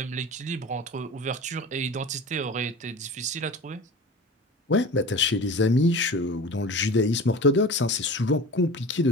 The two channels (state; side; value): normal; both; correlation 0.36